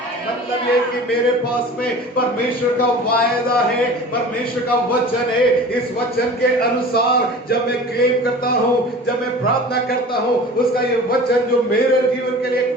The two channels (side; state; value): both; normal; correlation 0.40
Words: मतलब ये कि मेरे पास में परमेश्वर का वायदा है, परमेश्वर का वचन है। इस वचन के अनुसार जब मैं क्लेम करता हूँ, जब मैं प्रार्थना करता हूँ, उसका ये वचन जो मेरे जीवन के लिए एक